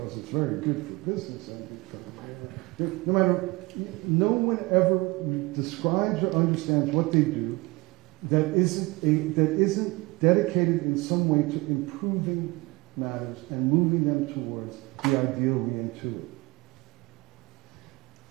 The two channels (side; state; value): left; quieter; 24.0 dB